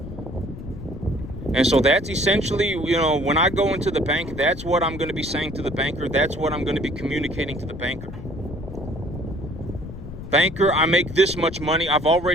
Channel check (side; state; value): left; noise; rumble, 11 dB below the sound